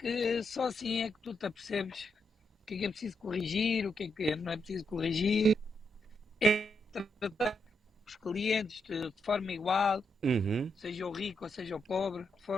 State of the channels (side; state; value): both; normal; correlation 0.81